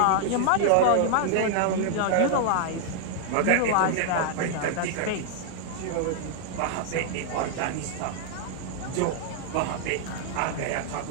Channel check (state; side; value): different; both; correlation 0.00